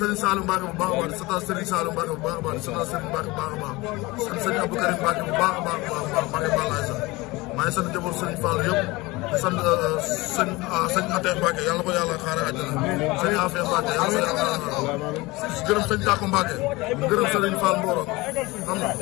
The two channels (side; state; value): right; quieter; 22.0 dB